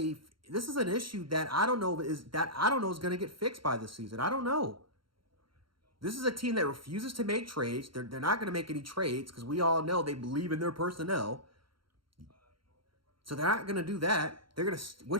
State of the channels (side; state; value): left; late; 0.73 ms